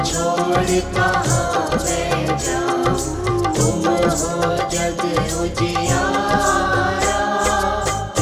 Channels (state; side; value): identical; both; correlation 1.00